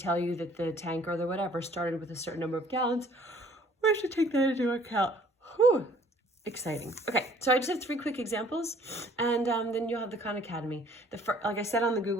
you that the tank or the whatever started with a certain number of gallons, we should take that into account. Whew. Exciting. Okay, so I just have 3 quick examples, and then you'll have the Khan Academy. Like I said on the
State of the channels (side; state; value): both; normal; correlation 0.57